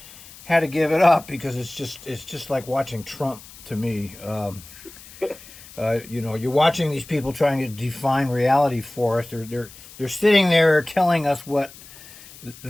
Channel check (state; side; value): noise; left; hiss, 19 dB below the sound